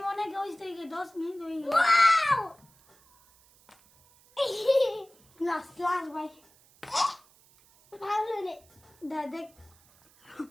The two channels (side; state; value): right; noise; hiss, 29 dB below the sound